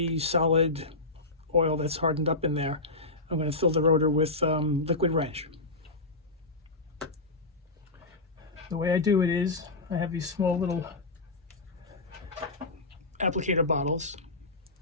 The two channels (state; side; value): quieter; right; 3.1 dB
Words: solid oil that's hardened up in there. I'm going to fill the rotor with liquid wrench. The way I do it is I have these small little applicator bottles,